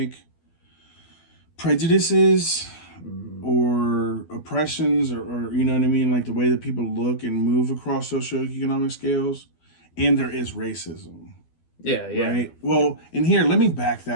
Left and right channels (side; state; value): right; late; 12 ms